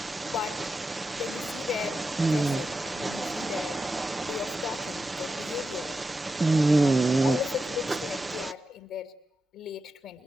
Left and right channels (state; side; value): normal; both; correlation 0.90